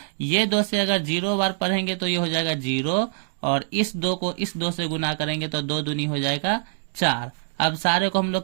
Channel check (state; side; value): silent; left; digital silence